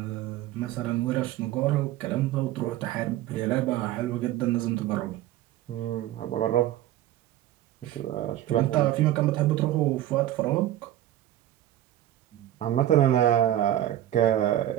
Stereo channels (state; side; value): quieter; left; 13.3 dB